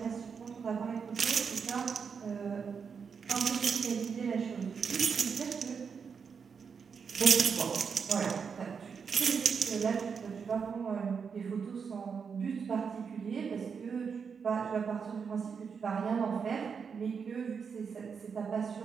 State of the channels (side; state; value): left; quieter; 6.1 dB